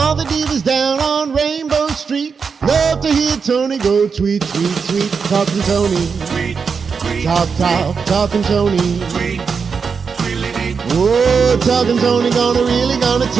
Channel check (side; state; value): left; quieter; 5.7 dB